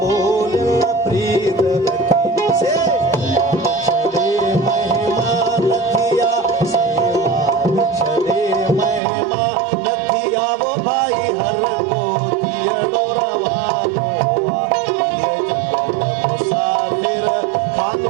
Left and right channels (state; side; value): drops out; left; at 9.0 s